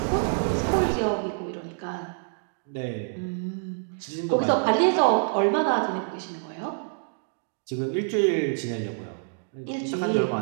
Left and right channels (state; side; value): silent; left; digital silence